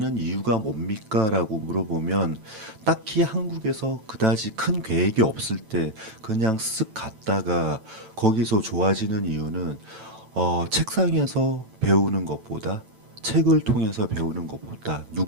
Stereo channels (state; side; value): late; left; 9.1 ms